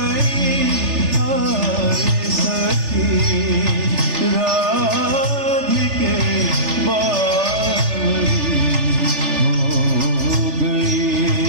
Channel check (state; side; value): late; left; 3.4 ms